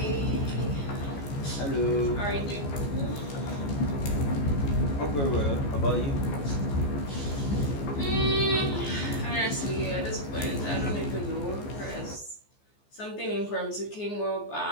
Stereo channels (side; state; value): right; late; 14 ms